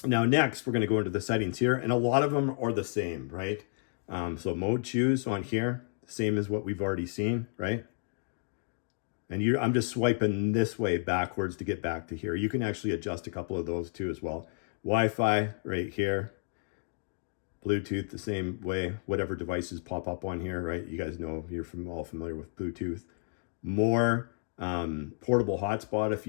Now next, we're going to go into the settings here, and a lot of them are the same, right? So mode choose on here, same as what we've already seen, right? And I'm just swiping this way backwards to get back to here. You can actually adjust a couple of those too as well. Wi-Fi right here. Bluetooth the same way, whatever devices pop up on here, right? You guys know, you're all familiar with Bluetooth. More portable hotspot if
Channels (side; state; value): right; silent; digital silence